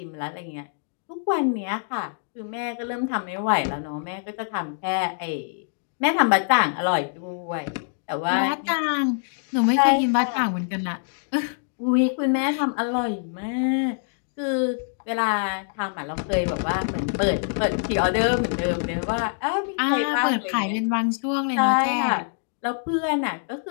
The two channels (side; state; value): right; silent; digital silence